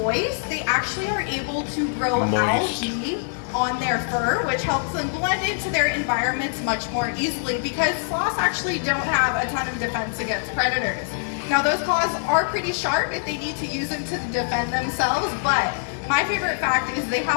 they actually are able to grow algae on their fur, which helps them blend into their environments much more easily, because sloths actually don't have a ton of defense against predators. Now, those claws are pretty sharp if they need to use them to defend themselves, but my favorite fact is they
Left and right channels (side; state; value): right; silent; digital silence